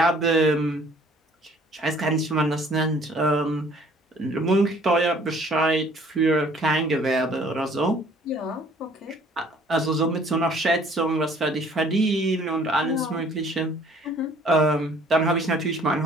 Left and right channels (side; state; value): both; normal; correlation 0.56